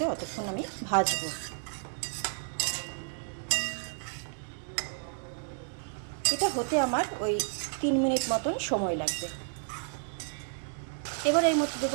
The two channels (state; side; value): silent; left; digital silence